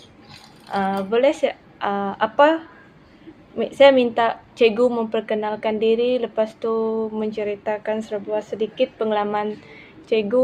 Boleh saya minta cikgu memperkenalkan diri, lepas tu menceritakan sedikit pengalaman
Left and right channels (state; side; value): identical; both; correlation 1.00